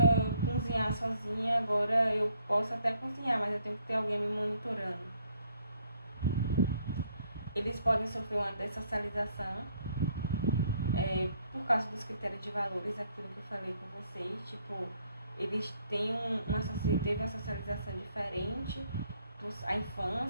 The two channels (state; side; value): inverted; both; correlation -0.68